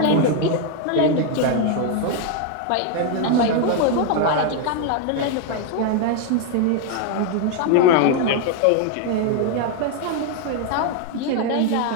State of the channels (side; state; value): both; different; correlation 0.01